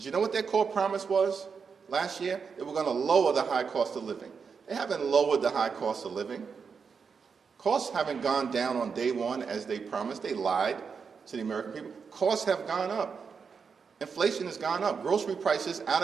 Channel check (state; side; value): quieter; left; 5.8 dB